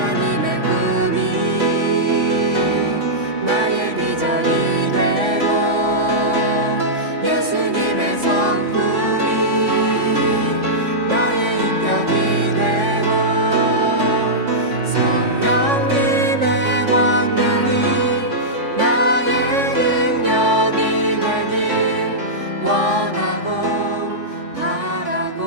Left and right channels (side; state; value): left; late; 3.5 ms